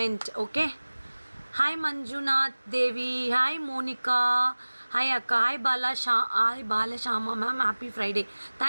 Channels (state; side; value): inverted; both; correlation -1.00